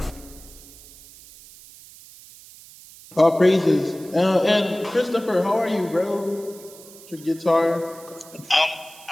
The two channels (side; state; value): right; noise; hiss, 20 dB below the sound